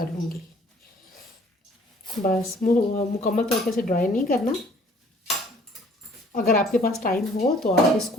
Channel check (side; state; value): both; normal; correlation 0.57